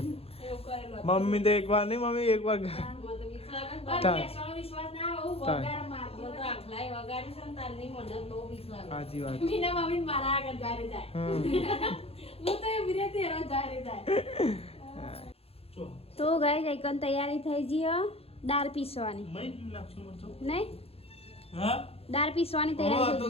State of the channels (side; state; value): right; late; 0.29 ms